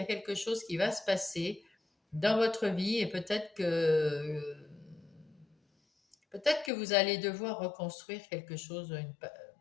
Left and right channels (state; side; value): drops out; right; at 6.7 s